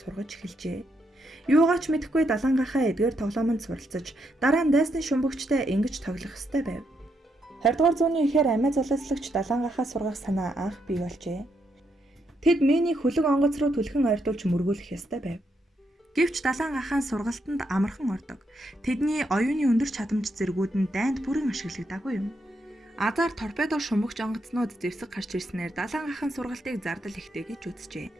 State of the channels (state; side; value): normal; both; correlation 0.79